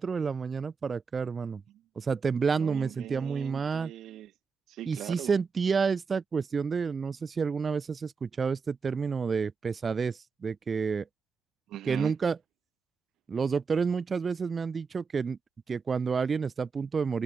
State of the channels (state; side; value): quieter; left; 5.3 dB